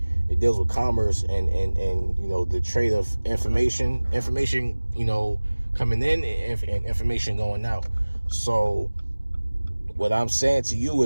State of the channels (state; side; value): inverted; both; correlation -1.00